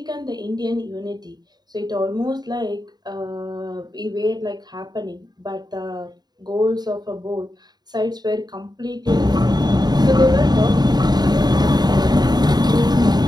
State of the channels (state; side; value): late; left; 0.20 ms